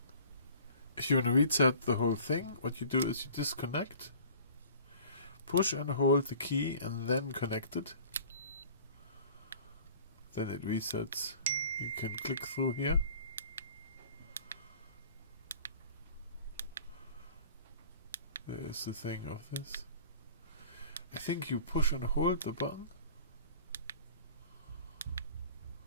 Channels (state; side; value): inverted; both; correlation -0.48